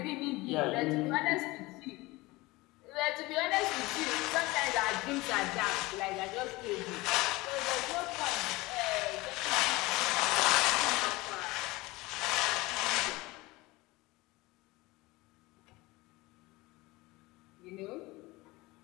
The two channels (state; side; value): quieter; right; 21.4 dB